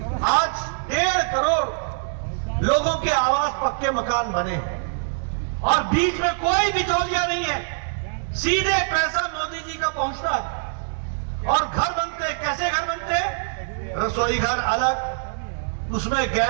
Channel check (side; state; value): left; silent; 63 dB below the other